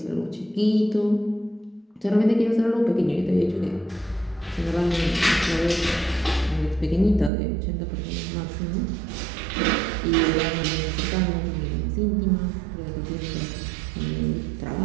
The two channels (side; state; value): left; drops out; at 7.3 s